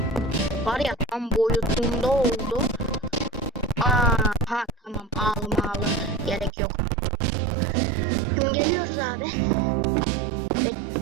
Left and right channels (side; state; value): left; drops out; at 6.5 s